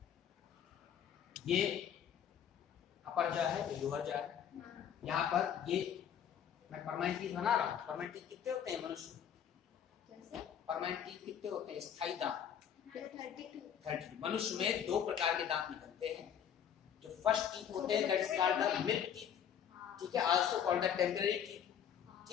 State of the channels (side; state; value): right; quieter; 8.8 dB